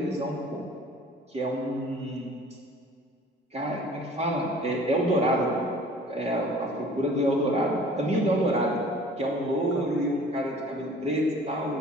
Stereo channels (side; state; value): both; normal; correlation 0.48